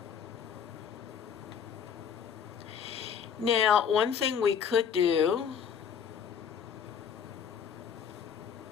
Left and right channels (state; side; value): quieter; right; 7.4 dB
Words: Now, one thing we could do